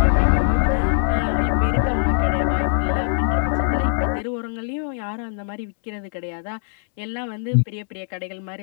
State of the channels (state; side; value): silent; right; 64 dB below the other